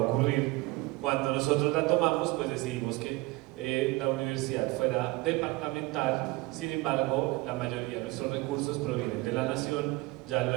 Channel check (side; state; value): left; quieter; 21.9 dB